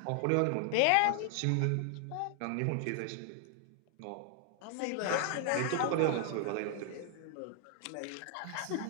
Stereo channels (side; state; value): both; different; correlation 0.00